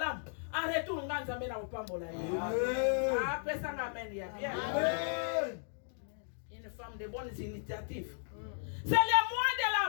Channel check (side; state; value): right; silent; digital silence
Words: En retour nga Nzambe na opambola yo. Ah, pesa nga amen ya bien. Amen. Une femme de bonnes initiatives. C'est le mois de